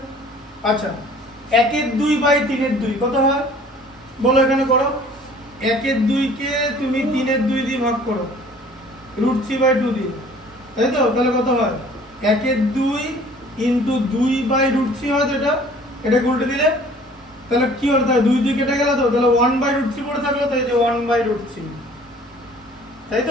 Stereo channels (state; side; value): normal; both; correlation 0.52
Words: আচ্ছা 1 এর 2 বাই 3 এর 2 কত হয় বলো, এখানে করো। 1 এর 2 কে তুমি 3 এর 2 দিয়ে ভাগ করো √3/2 দিয়ে, তাই তো, তাহলে কত হয় 1 এর 2 ইনটু 2 বাই √3 হয় তো, এটা উল্টে দিলে তাহলে কি হলো, তাহলে 2 2 কেটে গেল তো, তাহলে 1/√3 পড়ে থাকলো তো, এই যে 1/√3, তাই